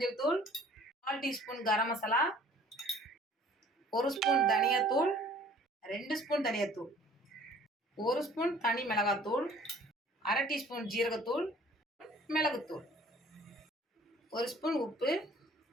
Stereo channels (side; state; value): both; normal; correlation 0.53